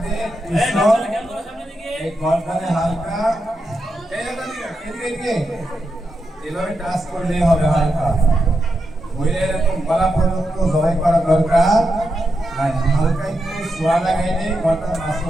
কৃষ্ণ এই গর্দানে হালকা এভাবে টাচ করলে হবে, হালকা হইলে এরকম গলা পর্যন্ত জবাই করা দরকার নাই, হালকা একটু ছোঁয়া লাগাইলে গর্দান মাছ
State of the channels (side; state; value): both; normal; correlation 0.86